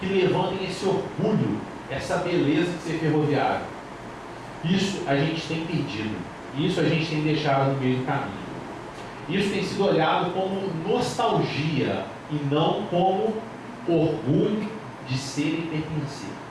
levantem esse orgulho, essa beleza de ser ferroviário. Isso a gente tem perdido, isso a gente tem deixado no meio do caminho. Isso tem sido olhado como nostalgia e não como orgulho de ser e pertencer.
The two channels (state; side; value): identical; both; correlation 1.00